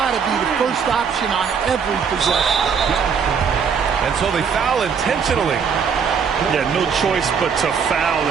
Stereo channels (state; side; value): quieter; left; 6.5 dB